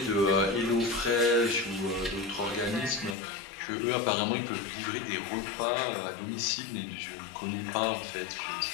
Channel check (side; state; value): right; drops out; at 3.2 s